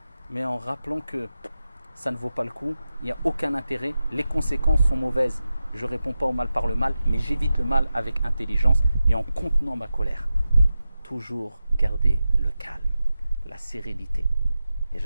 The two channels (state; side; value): inverted; both; correlation -0.92